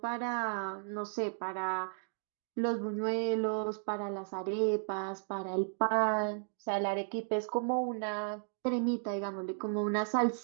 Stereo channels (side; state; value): left; silent; digital silence